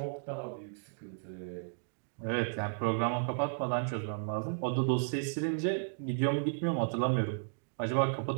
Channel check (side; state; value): left; silent; digital silence